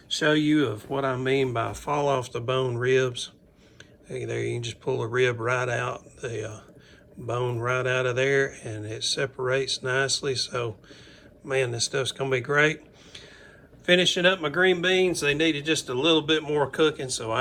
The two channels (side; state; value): both; identical; correlation 1.00